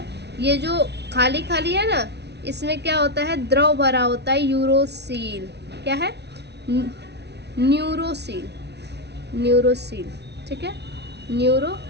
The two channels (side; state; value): left; late; 0.49 ms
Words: ये जो खाली खाली है ना, इसमें क्या होता है, द्रव भरा होता है, यूरोसील। क्या है? न्यूरोसील, ठीक है,